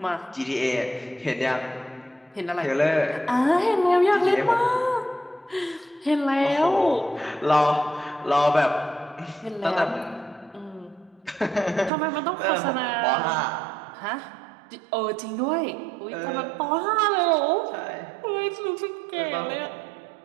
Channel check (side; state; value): left; drops out; at 11.9 s